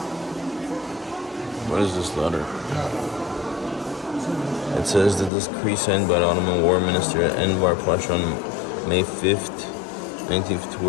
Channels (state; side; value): drops out; right; at 5.3 s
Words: What is this letter? It says the decree signed by the Ottoman War Minister Enver Pasha on May 5th, 19th